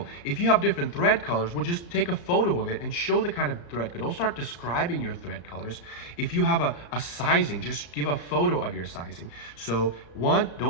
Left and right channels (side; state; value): right; late; 34 ms